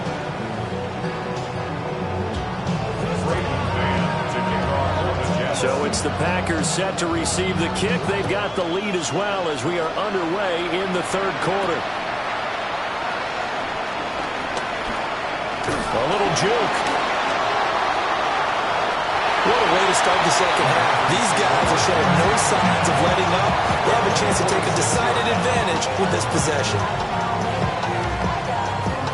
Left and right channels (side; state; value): both; identical; correlation 1.00